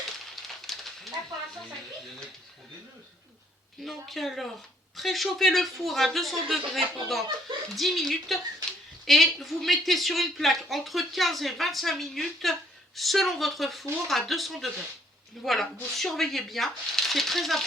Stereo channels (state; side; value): normal; both; correlation 0.65